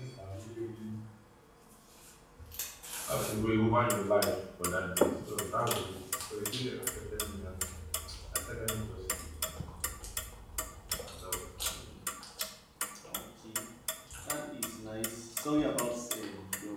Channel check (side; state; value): both; identical; correlation 1.00